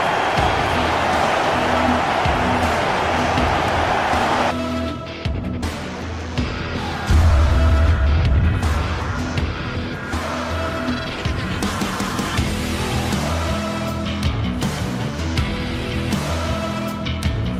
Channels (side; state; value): both; identical; correlation 1.00